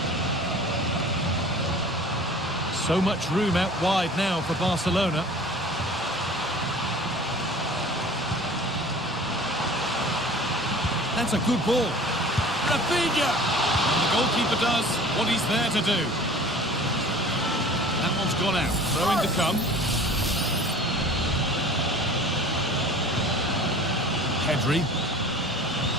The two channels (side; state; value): both; normal; correlation 0.44